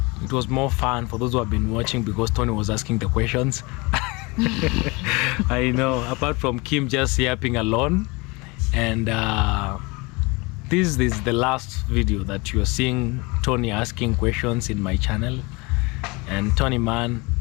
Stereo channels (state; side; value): quieter; right; 25.8 dB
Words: more fun for those who have been watching because Tony was asking the questions. I know, apart from Kim just yapping alone. And this is the last video that you're seeing Tony asking questions in my channel. And Tony, man,